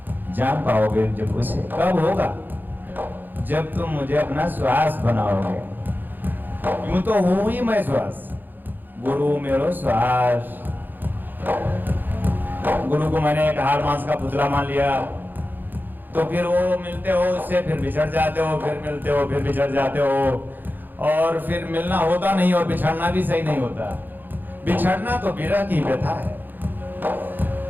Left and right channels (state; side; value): late; left; 0.089 ms